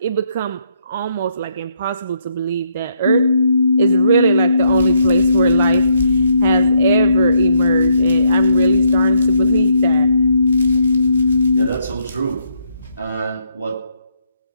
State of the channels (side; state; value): both; inverted; correlation -0.74